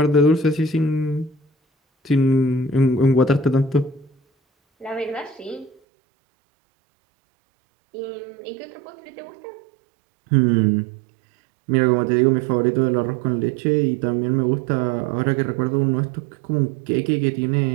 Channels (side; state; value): left; drops out; at 5.7 s